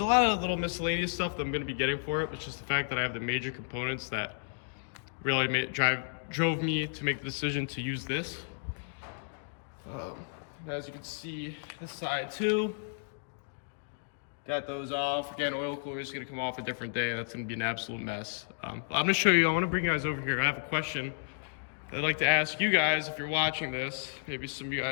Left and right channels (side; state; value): right; silent; digital silence